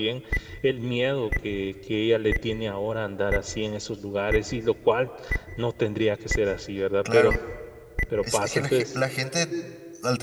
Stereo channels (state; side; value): identical; both; correlation 1.00